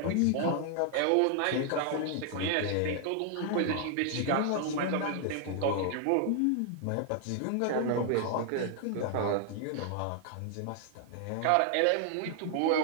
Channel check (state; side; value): different; both; correlation 0.00